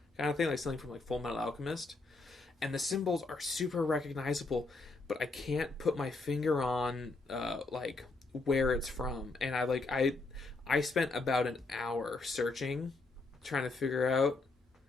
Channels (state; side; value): quieter; right; 3.5 dB